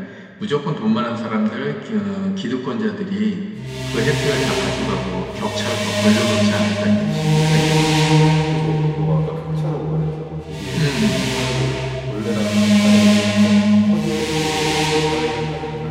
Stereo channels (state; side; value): identical; both; correlation 1.00